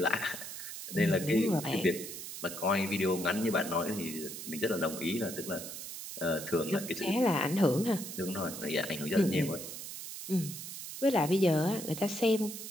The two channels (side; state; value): right; noise; hiss, 9 dB below the sound